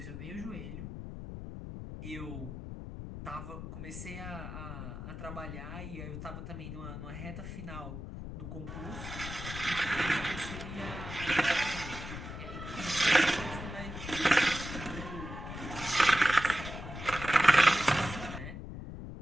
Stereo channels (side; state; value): left; noise; rumble, 8 dB below the sound